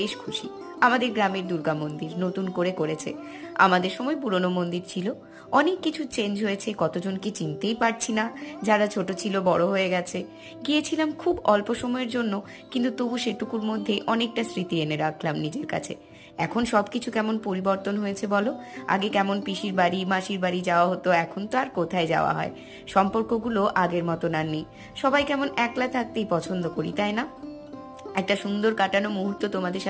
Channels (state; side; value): identical; both; correlation 1.00